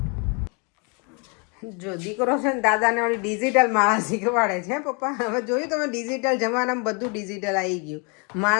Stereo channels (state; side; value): quieter; right; 33.6 dB